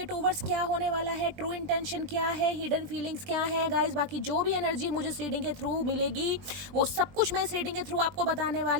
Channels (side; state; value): left; late; 20 ms